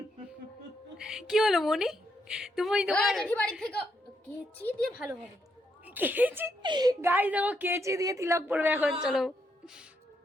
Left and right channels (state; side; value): normal; both; correlation 0.78